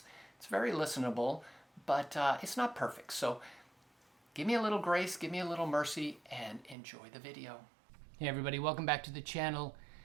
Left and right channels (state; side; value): drops out; left; at 6.8 s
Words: it's very listenable, but it's not perfect. So give me a little grace, give me a little mercy, and enjoy the video. Hey everybody, welcome back to the channel.